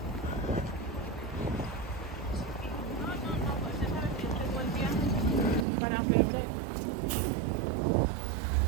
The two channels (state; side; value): drops out; left; at 5.7 s